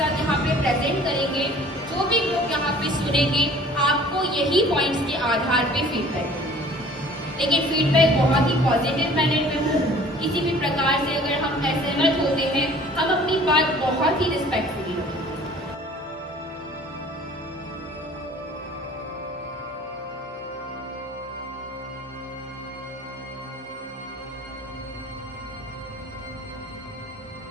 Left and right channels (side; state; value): both; normal; correlation 0.49